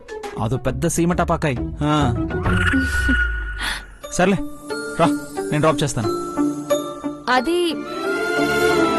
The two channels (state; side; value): identical; both; correlation 1.00